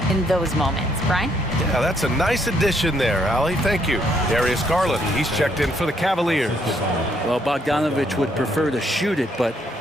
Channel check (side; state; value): both; normal; correlation 0.71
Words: in those moments. Brian? Yeah, that's a nice addition there, Allie. Thank you. Darius Garland, he's checked in for the Cavaliers. Well, Bogdanovich would prefer to shoot it, but